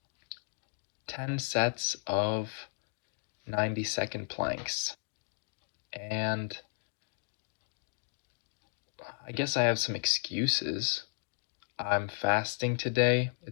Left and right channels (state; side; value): silent; right; digital silence